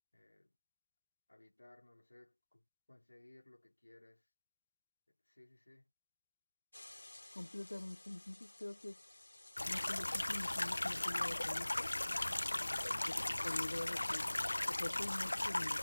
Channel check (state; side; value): inverted; both; correlation -1.00